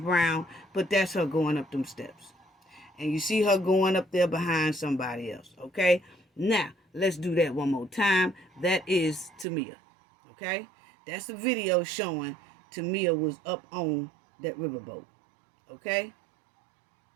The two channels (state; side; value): drops out; left; at 9.5 s